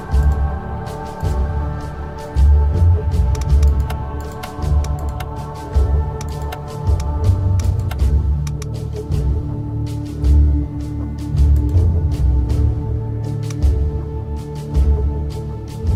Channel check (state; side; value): identical; both; correlation 1.00